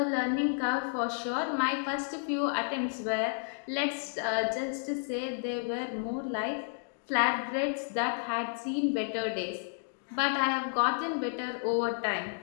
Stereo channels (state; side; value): silent; right; digital silence